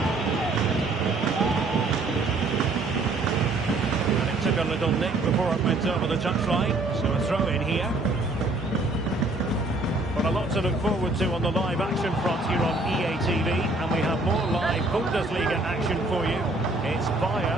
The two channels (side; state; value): left; quieter; 3.0 dB